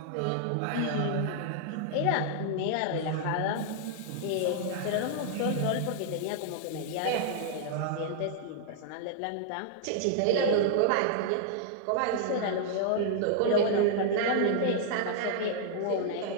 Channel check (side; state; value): both; different; correlation -0.01